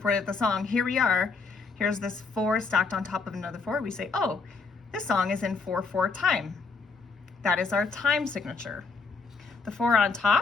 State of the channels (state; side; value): quieter; right; 4.5 dB